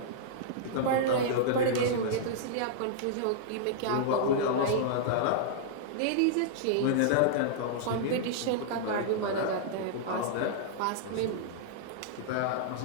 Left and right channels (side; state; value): both; different; correlation -0.02